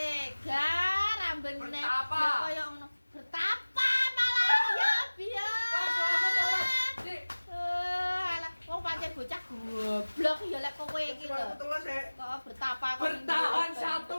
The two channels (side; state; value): both; inverted; correlation -1.00